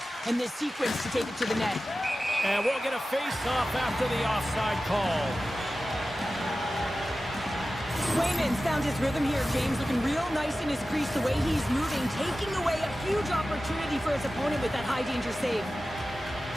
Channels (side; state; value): both; normal; correlation 0.95